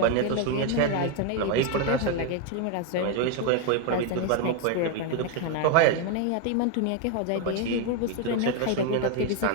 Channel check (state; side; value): different; both; correlation 0.01